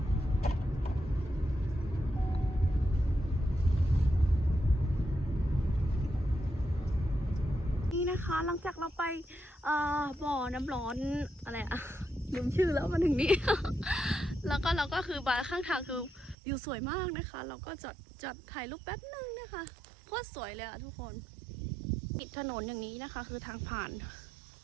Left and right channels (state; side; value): drops out; left; at 16.4 s